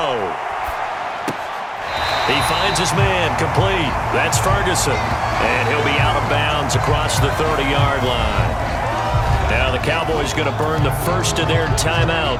He finds his man complete. That's Ferguson. And he'll be out of bounds across the 30-yard line. Now the Cowboys going to burn the first of their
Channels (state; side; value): identical; both; correlation 1.00